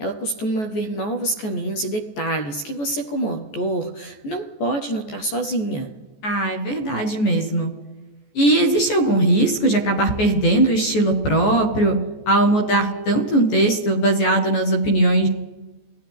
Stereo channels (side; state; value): right; late; 14 ms